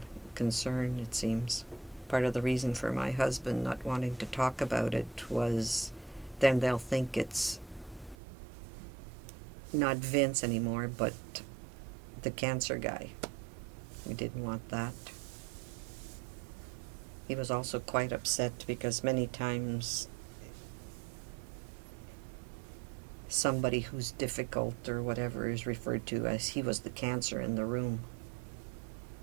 concern, it seems. Part of the reason for my husband not wanting to talk about it was then they'll think it's not Vince anymore, but the cancer guy. We didn't want that. He was also quite upset because many times somebody who's difficult or whatever is referred to as he was the cancer in the room.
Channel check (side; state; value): left; drops out; at 8.2 s